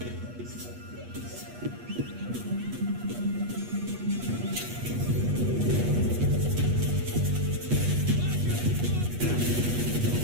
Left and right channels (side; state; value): left; late; 8.3 ms